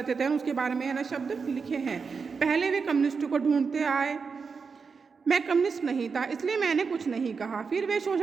थे उसके बारे में है ना शब्द लिखे हैं। पहले वे कम्युनिस्टों को ढूंढते आए, मैं कम्युनिस्ट नहीं था इसलिए मैंने कुछ नहीं कहा। फिर वे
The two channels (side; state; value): left; quieter; 5.3 dB